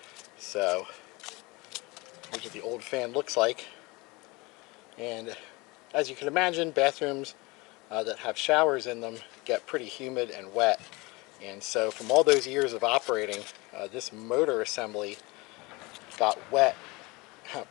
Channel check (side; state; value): right; quieter; 24.5 dB